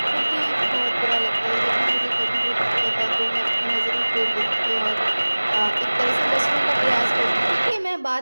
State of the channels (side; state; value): both; inverted; correlation -1.00